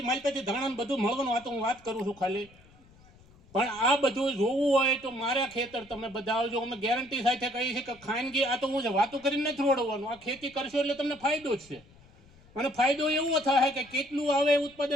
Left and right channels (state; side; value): noise; left; rumble, 27 dB below the sound